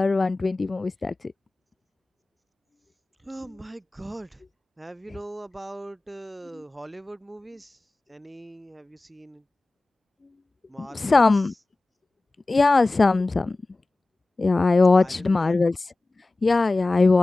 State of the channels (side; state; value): right; quieter; 3.1 dB